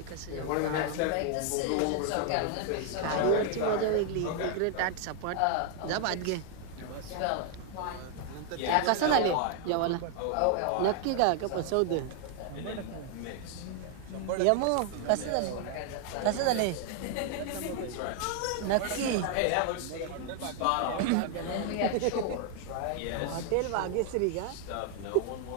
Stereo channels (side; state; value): both; different; correlation 0.00